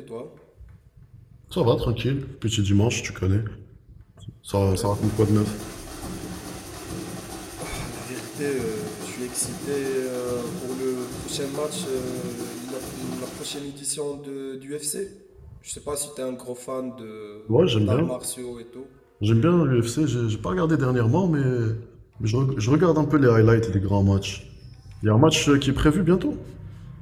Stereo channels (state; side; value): identical; both; correlation 1.00